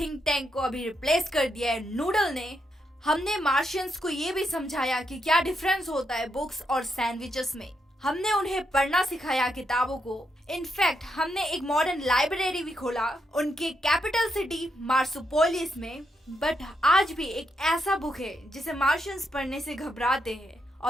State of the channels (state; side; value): normal; both; correlation 0.81